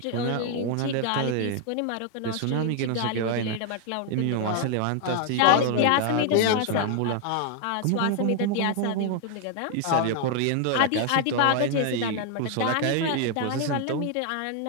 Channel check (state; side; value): different; both; correlation 0.00